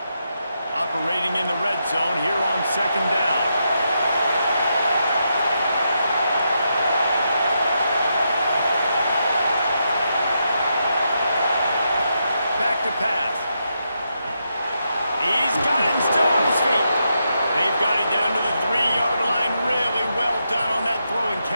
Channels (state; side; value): inverted; both; correlation -0.83